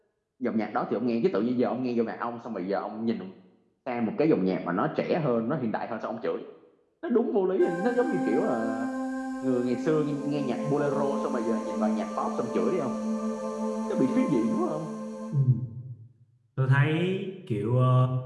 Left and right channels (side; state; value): both; identical; correlation 1.00